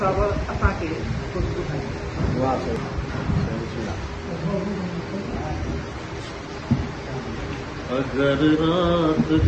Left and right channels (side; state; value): both; identical; correlation 1.00